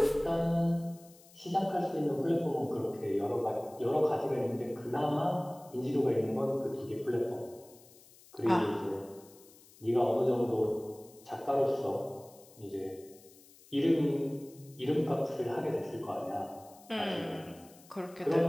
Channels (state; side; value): noise; left; hiss, 24 dB below the sound